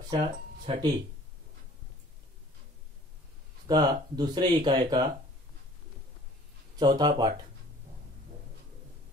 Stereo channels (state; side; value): normal; both; correlation 0.52